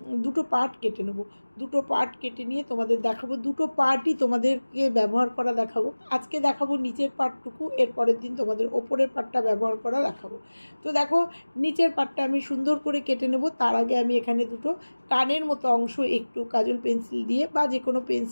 দুটো পার্ট কেটে নেব। দুটো পার্ট কেটে নিয়ে তোমাদের দেখাবো। দুটো পার্টই তোমাদেরকে ব্যবহার করা দেখাবো। আজকে দেখাবো নিচের পার্টটুকু, এর পরের দিন তোমাদের ওপরের পার্টটা ব্যবহার করা দেখাবো। তো দেখো, নিচের পার্টটা আমি সুন্দর করে কেটে নেব। তার আগে আমি এখানে দুটো কানের মতো অংশ একটু কাজল পেন্সিল দিয়ে বা যে কোনো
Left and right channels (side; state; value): both; inverted; correlation -1.00